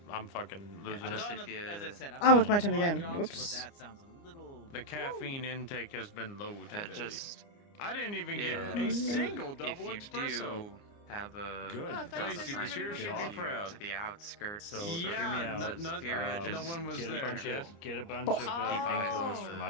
fucking losing I've it. done, if you- as I said, I've Oh, done it's my turn odd again. jobs, Whoops. But that sounds a little. The caffeine intake has been low today. Just I didn't even get Yeah. a single if double you espresso. do have a Good. job Lacey, assigned the cheer to should be you proud. to the outskirts. So of Yeah, the Safira, no just one was get a there. bunch Yes. of get a bunch Oh. of keep eyes on painkillers for the-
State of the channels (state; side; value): late; right; 29 ms